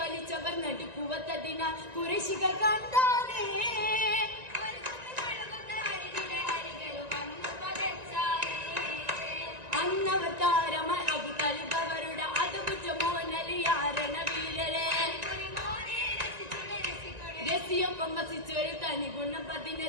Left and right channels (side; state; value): left; late; 1.9 ms